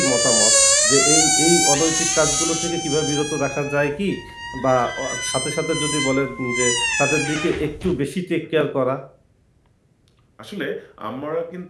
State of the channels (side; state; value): both; identical; correlation 1.00